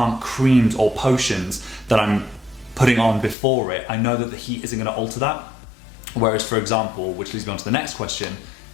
creams or potions that I'm putting on before it, I know that the heat isn't going to alter that. Whereas, for example, which leads me on to the next question,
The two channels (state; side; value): drops out; right; at 3.4 s